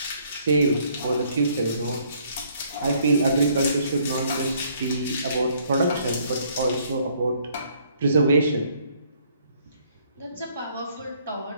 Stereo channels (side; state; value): both; inverted; correlation -0.64